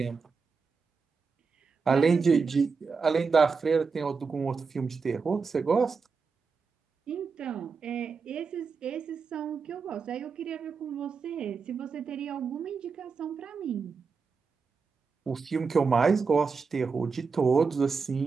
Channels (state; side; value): quieter; left; 5.1 dB